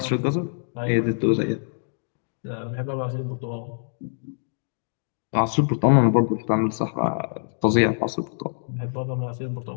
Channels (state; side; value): silent; right; digital silence